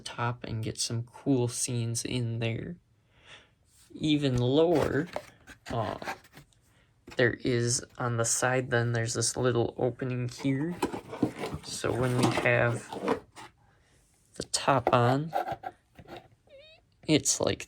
and get some cool scenes in there. Even lower, there is on the side, then there's this little opening here. So when we have the top on, it's like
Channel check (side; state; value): both; identical; correlation 1.00